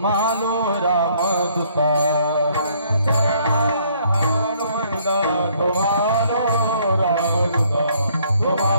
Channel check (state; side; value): inverted; both; correlation -0.64